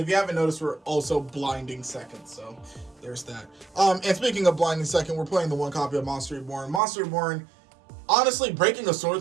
you haven't noticed, we're also blinding second. So, there's that. And speaking of blinding second, we're playing the 1 copy of Monster Reborn. Monster Reborn, honestly, breaking a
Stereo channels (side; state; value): left; drops out; at 6.8 s